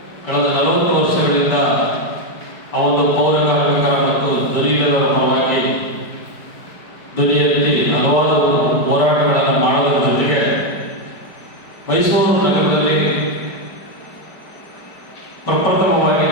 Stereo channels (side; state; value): right; late; 4.9 ms